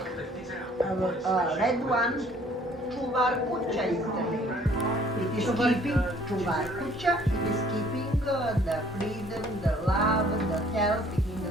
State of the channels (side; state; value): both; normal; correlation 0.58